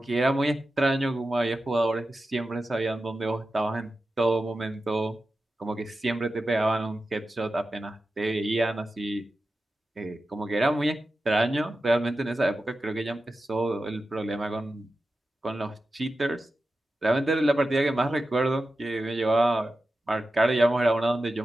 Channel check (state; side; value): normal; both; correlation 0.92